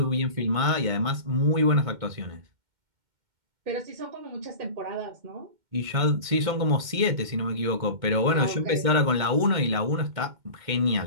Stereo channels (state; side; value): late; left; 2.1 ms